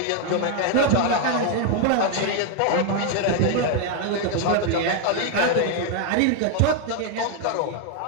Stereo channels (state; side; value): different; both; correlation 0.01